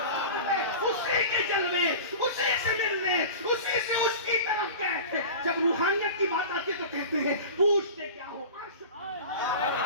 اسی کے جلوے اسی سے ملنے، اسی سے اس کی طرف گئے تھے۔ جب روحانیت کی بات آتی ہے تو کہتے ہیں پوچھتے کیا ہو عرش پر،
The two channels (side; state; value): both; inverted; correlation -0.34